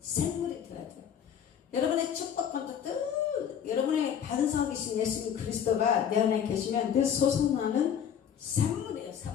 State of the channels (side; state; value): right; quieter; 8.5 dB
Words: 샘물이 되어야 돼요. 여러분의 축복권도 늘 여러분의 반석이신 예수님 그리스도가 내 안에 계시면 늘 솟아나는 샘물이에요.